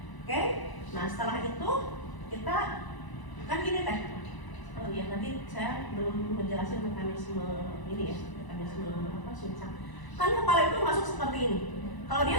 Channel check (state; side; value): late; right; 1.0 ms